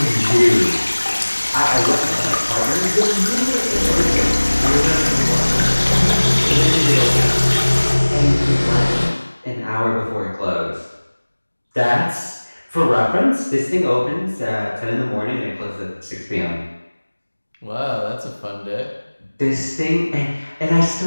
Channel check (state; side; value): inverted; both; correlation -1.00